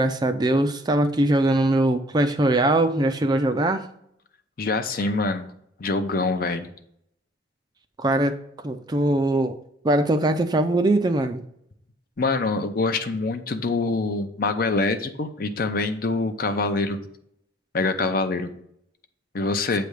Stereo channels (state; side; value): normal; both; correlation 0.53